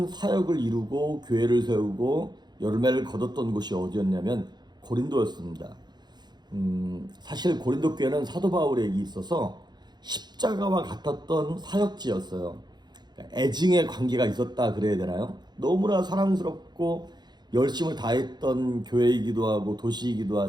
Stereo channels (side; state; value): left; late; 0.21 ms